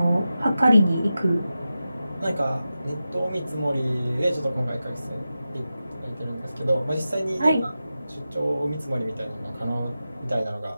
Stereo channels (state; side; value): inverted; both; correlation -0.92